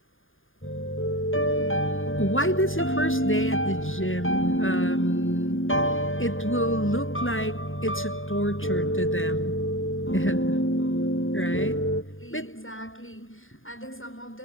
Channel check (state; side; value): late; right; 0.59 ms